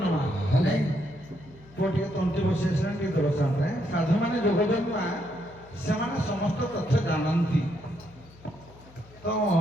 ପୁଅ ଟିକେ ତଣ୍ଟି ବସି ଆସିଲାଣି ଟିକେ ଦେବ ସାମନେ ସାଧୁ ମାନେ ଯୋଗ ଜନ୍ମା ସେମାନେ ସମସ୍ତ ତଥ୍ୟ ଜାଣନ୍ତି ତ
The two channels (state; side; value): noise; left; hum, 23 dB below the sound